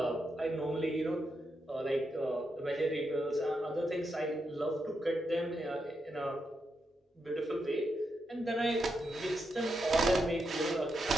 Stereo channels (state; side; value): normal; both; correlation 0.84